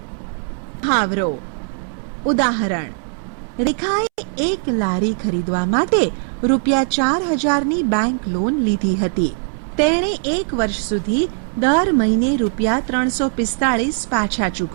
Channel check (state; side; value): silent; left; 66 dB below the other